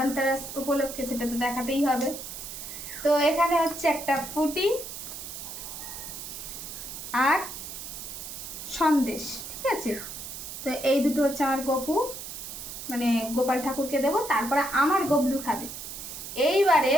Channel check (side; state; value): right; noise; hiss, 9 dB below the sound